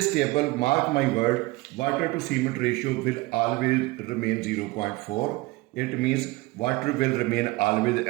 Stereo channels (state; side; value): quieter; left; 21.8 dB